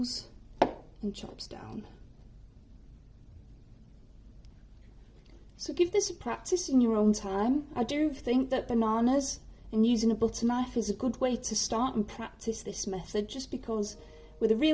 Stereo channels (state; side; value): identical; both; correlation 1.00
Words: and chops down. So give this a practice in your own time. I do think that bananas and using a butter knife is a good way to start and practice this method, just because with a